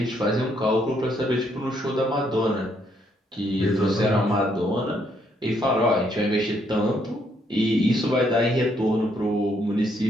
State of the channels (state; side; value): normal; both; correlation 0.72